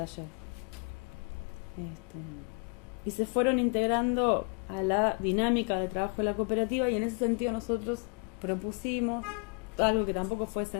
Y se fueron integrando a la dinámica de trabajo de la cooperativa, y en ese sentido nosotros propusimos algo que tampoco fue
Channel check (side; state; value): right; quieter; 36.2 dB